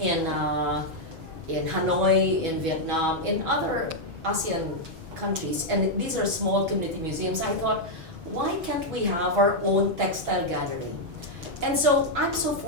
Hanoi, in Vietnam, in other ASEAN countries, and these are small community museums, I thought, why can't we have our own textile gallery? And so I'm so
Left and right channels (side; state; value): left; late; 6.2 ms